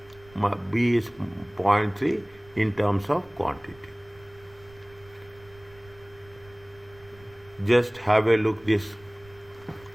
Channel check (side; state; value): right; noise; rumble, 24 dB below the sound